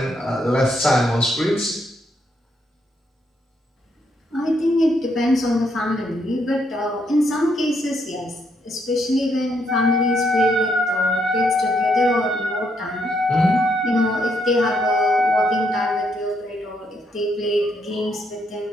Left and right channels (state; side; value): normal; both; correlation 0.75